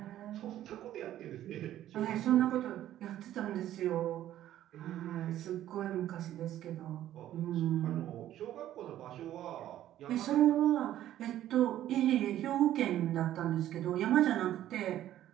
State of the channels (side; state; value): left; quieter; 12.6 dB